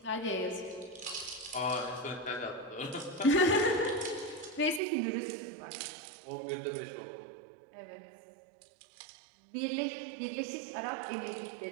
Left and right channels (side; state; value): left; drops out; at 4.8 s